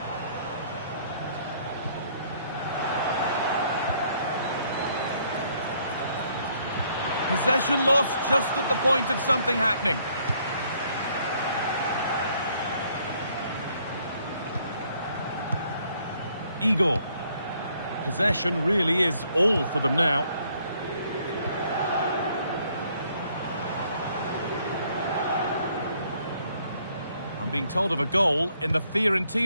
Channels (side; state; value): both; inverted; correlation -0.66